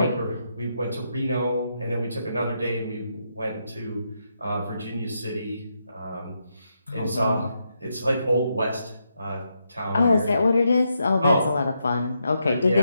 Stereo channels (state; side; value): inverted; both; correlation -0.82